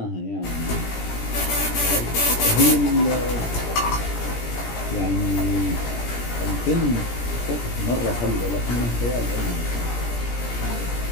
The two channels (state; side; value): late; right; 17 ms